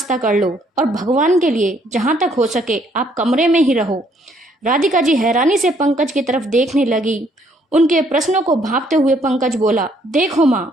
कर लो और भगवान के लिए जहाँ तक हो सके आप कमरे में ही रहो। राधिका जी हैरानी से पंकज की तरफ देखने लगी। उनके प्रश्नों को भांपते हुए पंकज बोला, देखो माँ,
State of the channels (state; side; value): normal; both; correlation 0.67